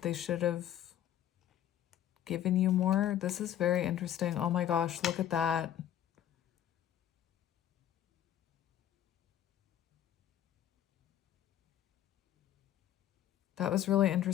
they should have given you more. This is very interesting. Oh my gosh, look at that. That was really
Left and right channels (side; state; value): right; quieter; 11.3 dB